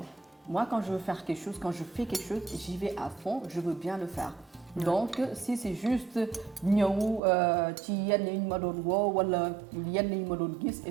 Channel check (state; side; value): drops out; left; at 7.2 s